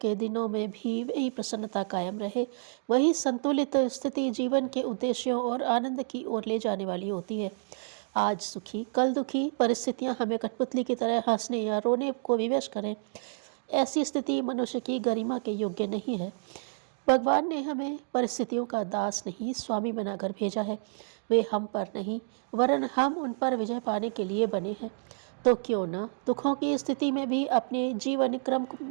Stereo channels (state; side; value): silent; left; digital silence